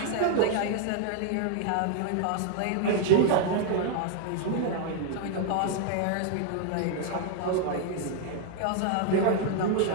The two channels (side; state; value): both; different; correlation 0.00